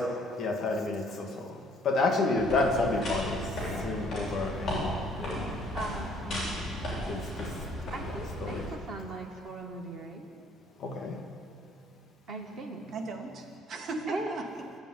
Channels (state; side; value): normal; both; correlation 0.60